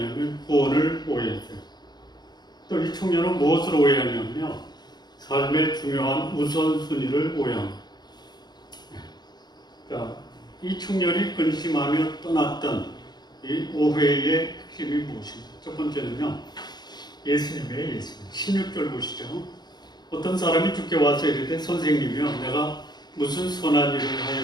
구원을 오해했어요. 또 이 청년은 무엇을 오해하냐면요, 삶의 중요한 우선순위를 오해합니다. 그러니까 이 청년이 근심하며 떠났던 이 오해의 핵심이 무엇인가? 첫 번째는요, 예수님이에요. 예수님. 16절 보시죠. 어떤 사람이 주께 와서 이르되 선생님이여, 내가 무슨 선한 일을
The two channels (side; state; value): right; late; 0.20 ms